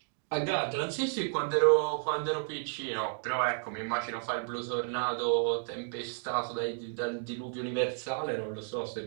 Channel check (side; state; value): left; silent; 56 dB below the other